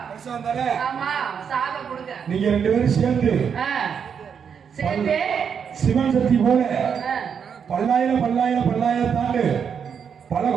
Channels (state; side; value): quieter; left; 7.1 dB